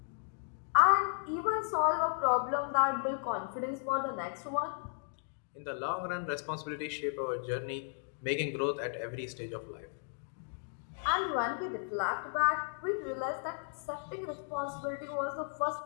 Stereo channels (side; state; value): right; silent; digital silence